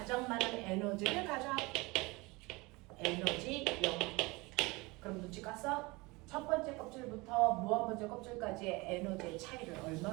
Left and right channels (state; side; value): quieter; left; 24.2 dB